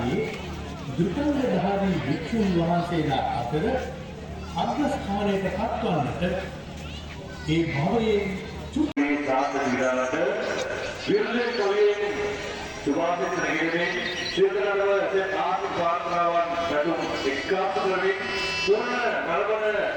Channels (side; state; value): both; identical; correlation 1.00